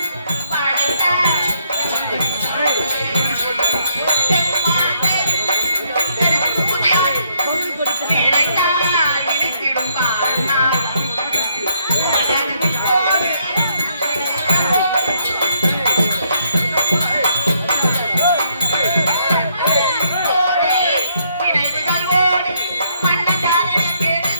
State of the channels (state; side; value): inverted; both; correlation -0.72